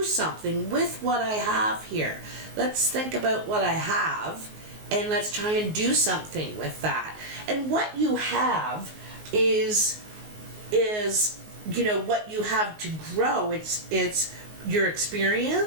something with what I have here. Let's think about what I have and let's try and do something with that. And what you have is what you have to grow. It's your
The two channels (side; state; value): left; late; 19 ms